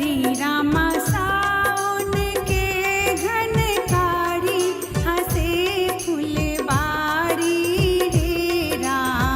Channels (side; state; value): both; identical; correlation 1.00